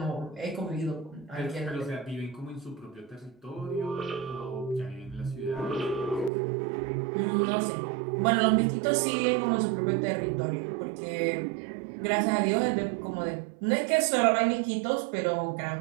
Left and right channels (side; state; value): left; drops out; at 6.3 s